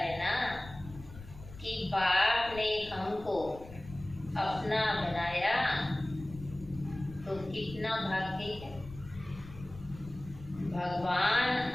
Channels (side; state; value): left; noise; rumble, 16 dB below the sound